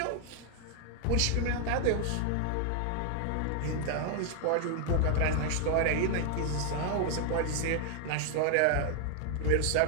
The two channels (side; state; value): both; different; correlation 0.00